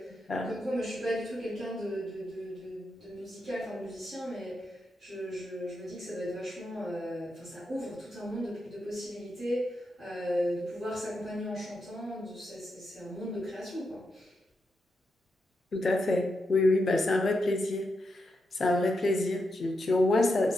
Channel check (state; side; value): normal; both; correlation 0.85